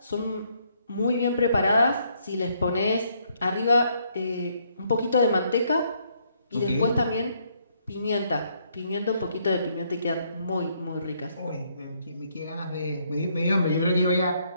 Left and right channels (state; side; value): inverted; both; correlation -0.71